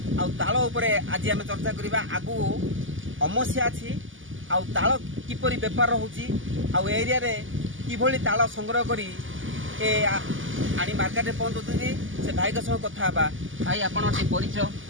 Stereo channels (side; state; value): left; late; 0.58 ms